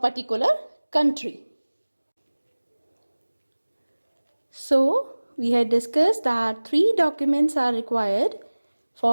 country. So, we had discussed that 3 documents are required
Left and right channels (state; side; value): inverted; both; correlation -1.00